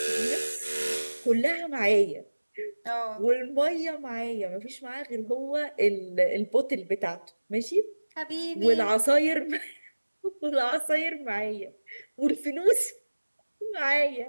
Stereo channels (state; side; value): inverted; both; correlation -1.00